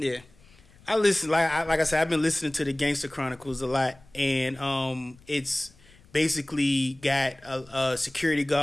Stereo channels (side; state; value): left; noise; rumble, 27 dB below the sound